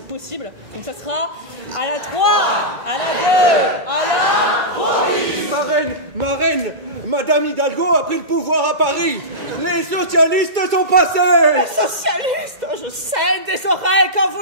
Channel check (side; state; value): left; late; 2.0 ms